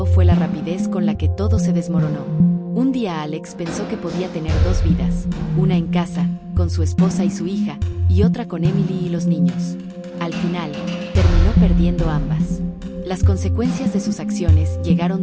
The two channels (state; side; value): identical; both; correlation 1.00